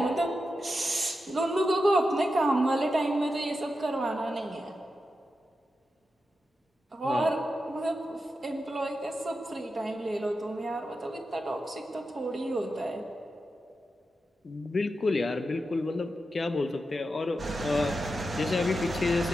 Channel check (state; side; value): normal; both; correlation 0.89